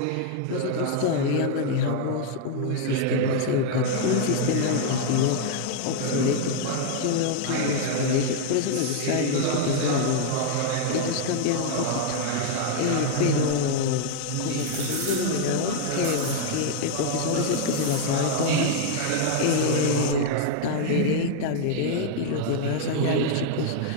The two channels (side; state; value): both; different; correlation 0.00